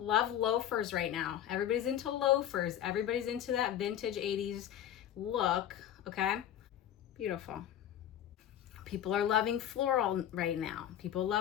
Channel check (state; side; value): quieter; right; 10.8 dB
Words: loafers right now. Everybody's into loafers. Everybody's into that vintage 80s look, okay? Beautiful. People are loving floral right now. People